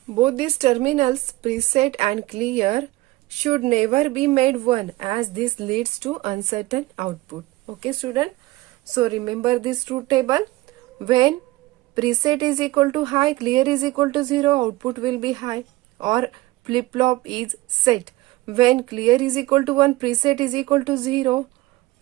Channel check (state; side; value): quieter; left; 19.2 dB